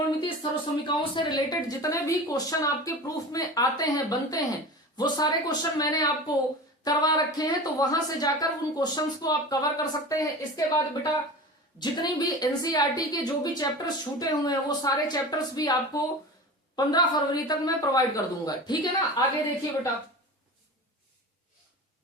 सर्वसमीकाओं से रिलेटेड जितने भी क्वेश्चन आपके प्रूफ में आते हैं, बनते हैं, वो सारे क्वेश्चन मैंने आपको करवा रखे हैं। तो वहां से जाकर उन क्वेश्चंस को आप कवर कर सकते हैं। इसके बाद बेटा जितनी भी एनसीईआरटी के जो भी चैप्टर्स छूटे हुए हैं, वो सारे चैप्टर्स भी आपको 15 फरवरी तक मैं प्रोवाइड कर दूंगा, ठीक है ना। आगे देखिए बेटा,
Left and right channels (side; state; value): both; normal; correlation 0.33